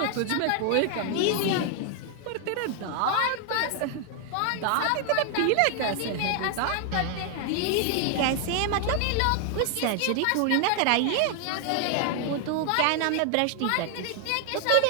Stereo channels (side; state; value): both; different; correlation 0.00